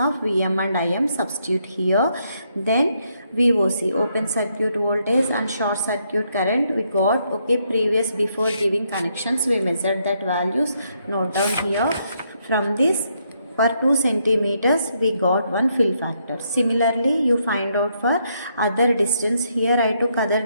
Vm and Im. Substitute here. Then VOC, open circuit voltage and short circuit current we got. Okay, before giving connections we measured that values. Note down here. From this, for 2 centimeters we got one fill factor. Similarly, you find out for other distance. Here I took other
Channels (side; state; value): both; inverted; correlation -0.76